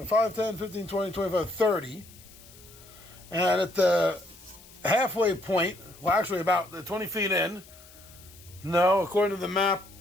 5, 10, 15, 20, 25, 30. And at the halfway point, well, actually about the 20 feet in, no, according to the map,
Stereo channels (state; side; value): noise; left; hiss, 22 dB below the sound